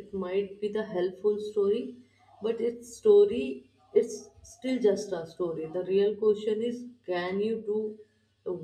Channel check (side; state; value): both; identical; correlation 1.00